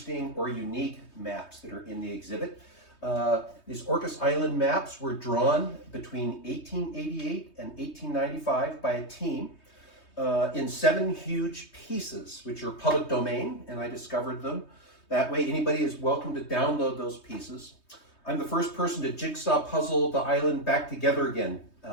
or unique maps that are in the exhibit. These Orcas Island maps were drawn between 1888 and 1895 by a team in 7 huge pieces, which are public domain, and I discovered them. That way anybody is welcome to download those pieces. I'm the first person to jigsaw puzzle the island back together again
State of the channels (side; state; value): right; late; 3.2 ms